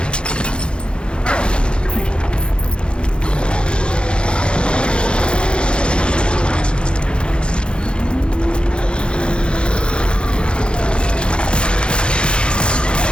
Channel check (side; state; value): right; late; 0.054 ms